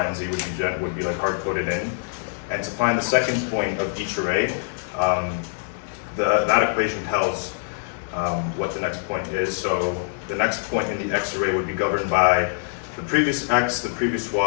and z, would be like hard-coded in. And to find the second point of each array, that equation tells what the next point is. So the next point in the x array would be governed by the previous x, the previous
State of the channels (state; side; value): silent; right; digital silence